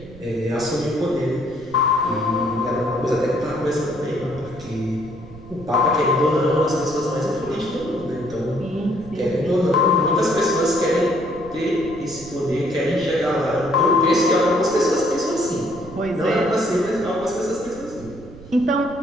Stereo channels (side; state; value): right; noise; rumble, 18 dB below the sound